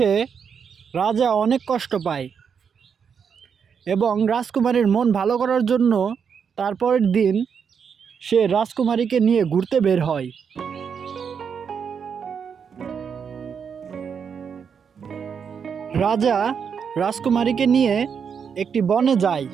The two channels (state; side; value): quieter; left; 6.8 dB